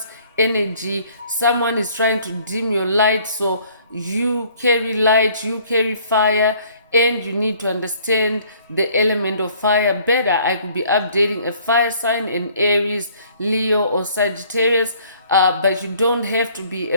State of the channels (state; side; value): inverted; both; correlation -0.58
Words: energy, someone is trying to dim your light, so you carry light, you carry fire, and you need to understand the element of fire better. I could be updating a fire sign in Aries, Leo, or Sagittarius, but you don't have to be